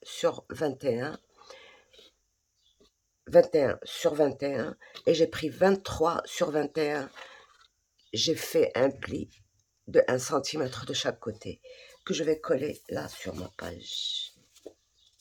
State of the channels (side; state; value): both; identical; correlation 1.00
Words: sur 21, 21 sur 21, et j'ai pris 23 sur 21. J'ai fait un pli de 1 cm de chaque côté, que je vais coller là sur ma page.